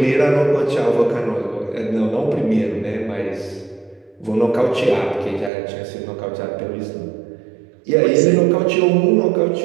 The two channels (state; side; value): drops out; left; at 5.5 s